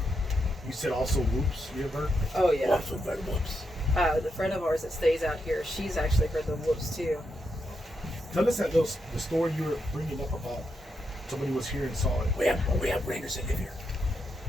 You said also whoops. You ever heard? Oh yeah. Also heard whoops. The friend of ours that stays out here, she's actually heard the whoops too. Tell us the story you were bringing up about somebody was here and saw it. We have rangers that live here.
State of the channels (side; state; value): both; normal; correlation 0.83